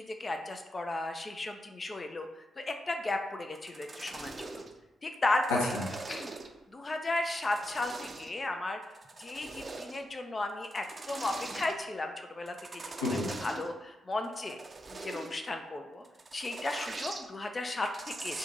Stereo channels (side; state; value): both; normal; correlation 0.86